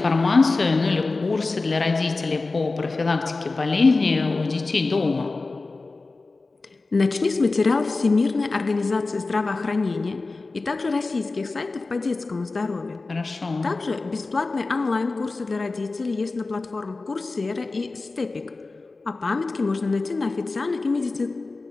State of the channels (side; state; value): right; quieter; 3.6 dB